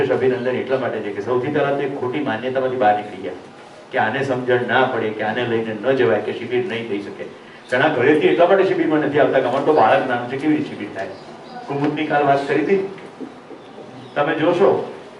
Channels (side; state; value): both; identical; correlation 1.00